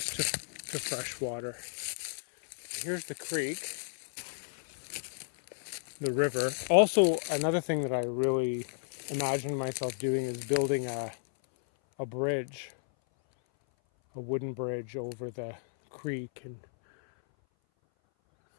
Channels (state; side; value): silent; right; 56 dB below the other